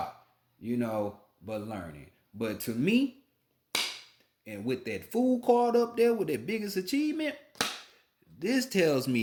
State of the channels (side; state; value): both; identical; correlation 1.00